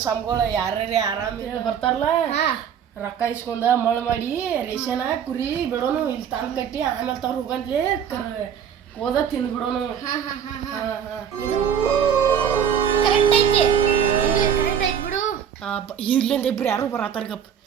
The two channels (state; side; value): quieter; left; 8.2 dB